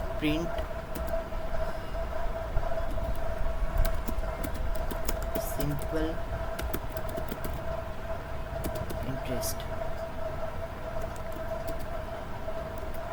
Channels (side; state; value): both; identical; correlation 1.00